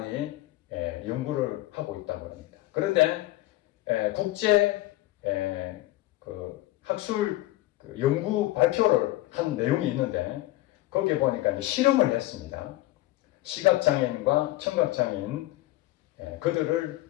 연구를 하고 있다고 합니다. 그런데 국제 그 학술 연구 발표를 한 내용이 있는데 거기에 보니까 이제 실험을 했습니다. 시각장애인과 청각장애인 그들을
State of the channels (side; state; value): right; quieter; 17.1 dB